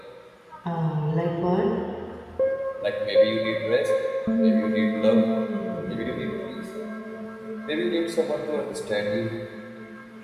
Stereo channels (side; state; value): both; identical; correlation 1.00